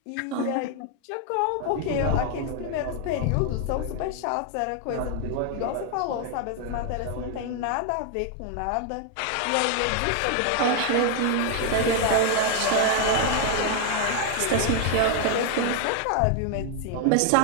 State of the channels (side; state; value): both; different; correlation 0.00